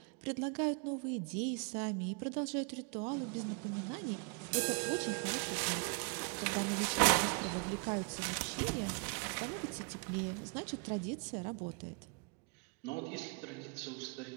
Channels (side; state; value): left; quieter; 36.5 dB